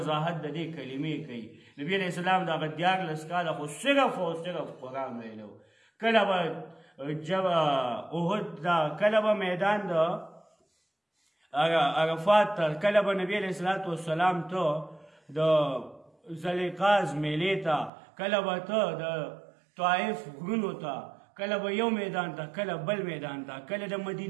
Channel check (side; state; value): left; drops out; at 17.9 s